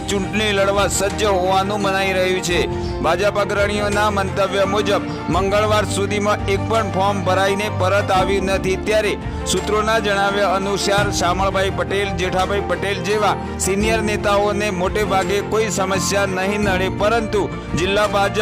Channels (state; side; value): identical; both; correlation 1.00